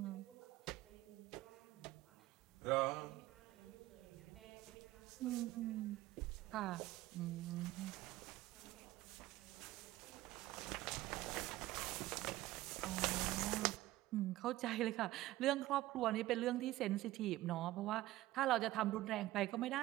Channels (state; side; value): quieter; left; 16.7 dB